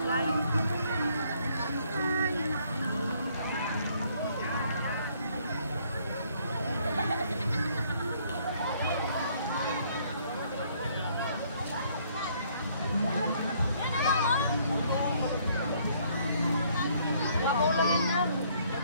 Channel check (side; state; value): both; inverted; correlation -0.65